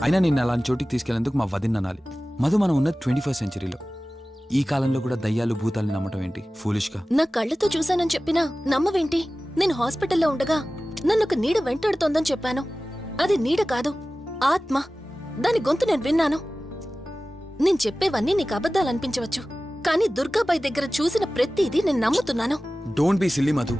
అయినా నిన్ను అలాంటి చోటికి తీసుకెళ్లేందుకు మా వదిన అనాలి. మధు, మనం ఉన్నది 21st సెంచరీలో. ఈ కాలంలో కూడా దయ్యాలు భూతాల్ని నమ్మటం ఏంటి ఫూలిష్గా? నా కళ్ళతో చూశానని చెప్పినా నమ్మవేంటి? నేను హాస్పిటల్లో ఉండగా నన్ను ఒక నీడ వెంటాడుతోందని చెప్పాను. అది నీడ కాదు, ఆత్మ. దాని గొంతు నేను విన్నాను. నేను చెప్పేవన్నీ నీకు అబద్ధాలనిపించవచ్చు, కానీ దుర్గాబాయ్ దగ్గర చూసిన ప్రతిదీ నేను నమ్ముతున్నాను. డోంట్ బీ సిల్లీ మధు,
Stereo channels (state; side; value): normal; both; correlation 0.96